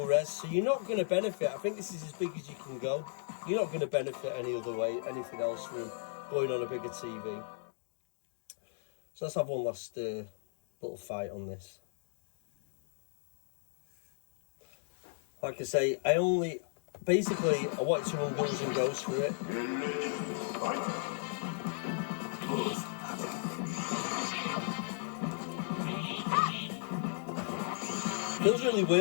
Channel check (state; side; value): silent; right; digital silence